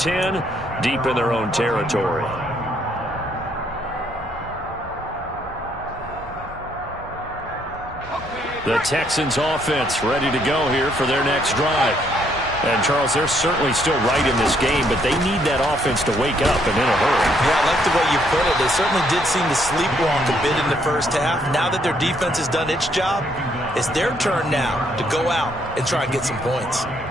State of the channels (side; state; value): both; normal; correlation 0.70